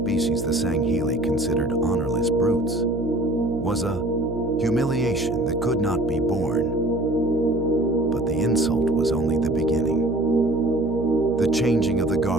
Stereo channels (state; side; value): noise; right; hum, 7 dB below the sound